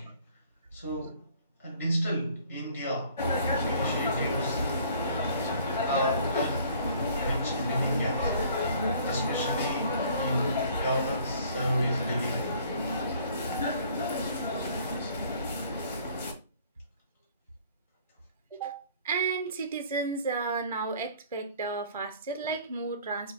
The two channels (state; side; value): inverted; both; correlation -0.55